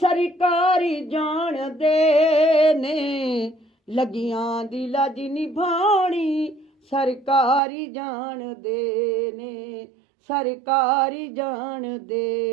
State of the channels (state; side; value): drops out; left; at 7.6 s